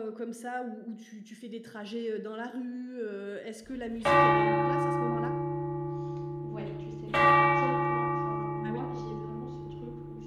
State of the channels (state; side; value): identical; both; correlation 1.00